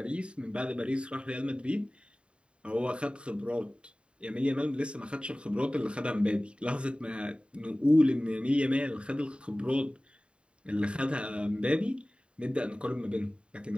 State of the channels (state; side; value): late; left; 0.055 ms